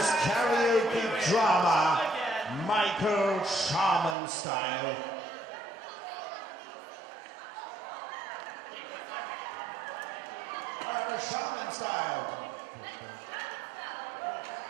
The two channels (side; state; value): left; drops out; at 4.2 s